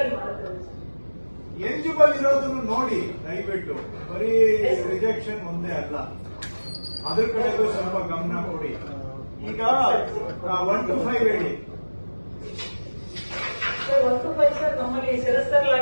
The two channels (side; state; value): both; inverted; correlation -1.00